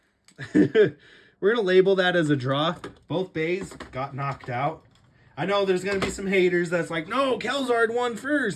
We're going to label that as a draw. Both bays got knocked out. I know there's going to be some haters that's like, no, Khalzar won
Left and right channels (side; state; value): both; identical; correlation 1.00